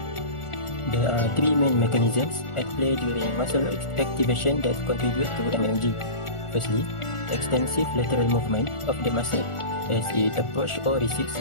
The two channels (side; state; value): right; late; 1.4 ms